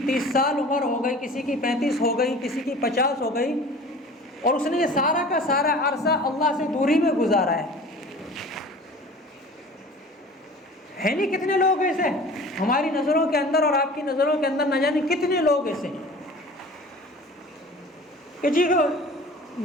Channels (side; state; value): both; normal; correlation 0.42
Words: 30 سال عمر ہو گئی، کسی کی 35 ہو گئی، کسی کی 50 ہو گئی، اور اس نے یہ سارا کا سارا عرصہ اللہ سے دوری میں گزارا ہے نہیں؟ کتنے لوگ ایسے ہماری نظروں کے اندر اور آپ کی نظروں کے اندر، نہ جانے کتنے لوگ ایسے ہیں کہ جی